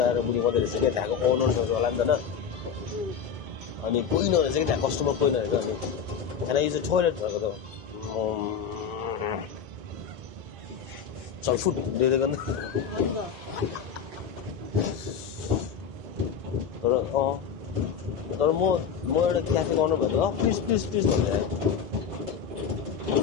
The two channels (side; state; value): right; quieter; 7.1 dB